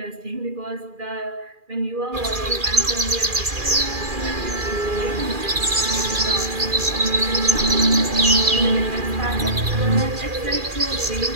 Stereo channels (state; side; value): late; left; 2.4 ms